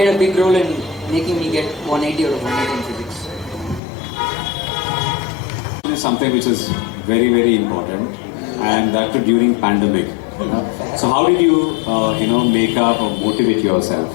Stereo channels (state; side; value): drops out; right; at 3.8 s